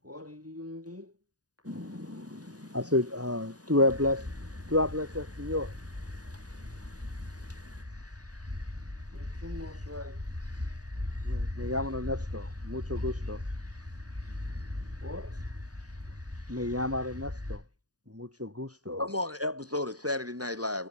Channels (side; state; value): left; late; 0.68 ms